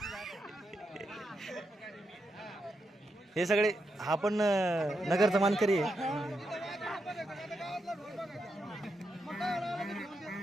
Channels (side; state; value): both; normal; correlation 0.84